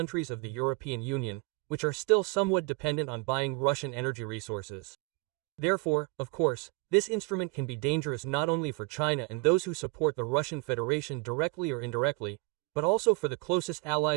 of the European Union, which are still somewhat dependent on buying Russian energy resources. Therefore, of course, this instrument can be dangerous not only for China and those who support the Russian Federation directly or indirectly, but also for the closest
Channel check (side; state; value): left; quieter; 27.1 dB